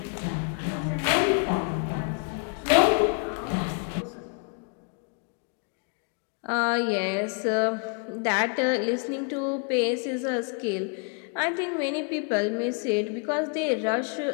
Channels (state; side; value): quieter; right; 38.1 dB